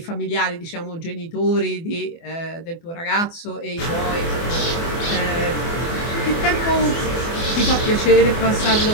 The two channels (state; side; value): late; right; 24 ms